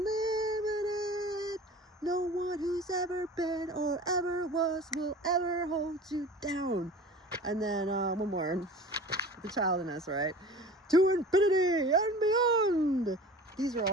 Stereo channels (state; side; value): normal; both; correlation 0.40